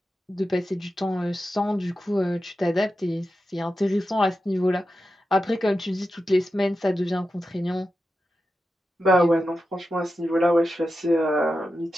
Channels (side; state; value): both; normal; correlation 0.91